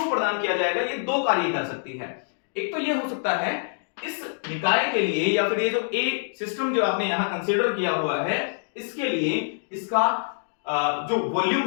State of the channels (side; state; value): right; silent; digital silence